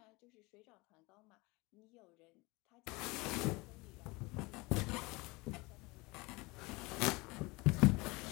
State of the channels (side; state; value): right; quieter; 24.3 dB